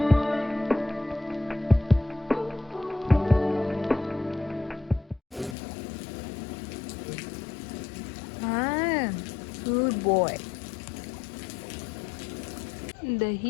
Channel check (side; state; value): right; drops out; at 5.6 s